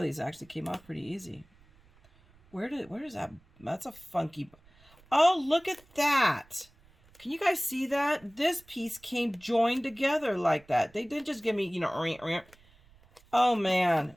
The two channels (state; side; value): noise; right; rumble, 29 dB below the sound